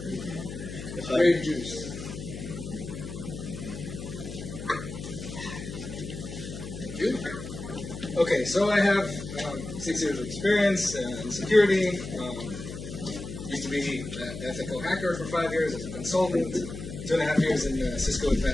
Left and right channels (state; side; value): noise; left; hum, 9 dB below the sound